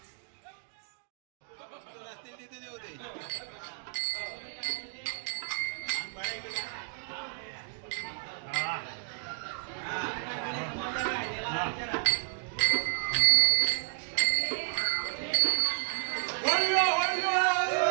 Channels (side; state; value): left; silent; 57 dB below the other